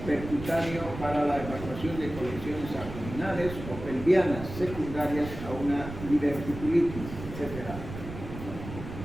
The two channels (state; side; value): noise; right; rumble, 10 dB below the sound